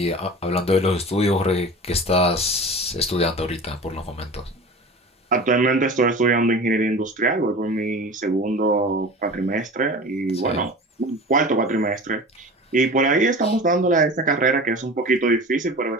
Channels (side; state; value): both; normal; correlation 0.36